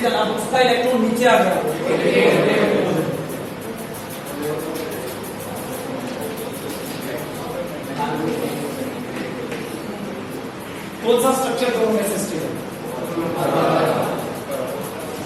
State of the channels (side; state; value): both; identical; correlation 1.00